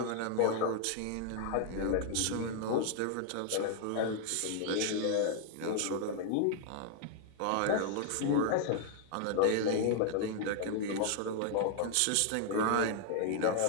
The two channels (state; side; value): different; both; correlation 0.00